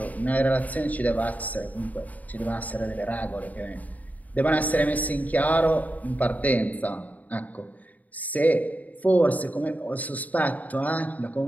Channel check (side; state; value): right; late; 0.075 ms